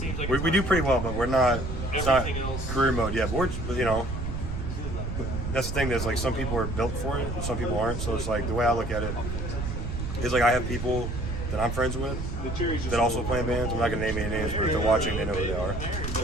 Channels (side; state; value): right; noise; rumble, 4 dB below the sound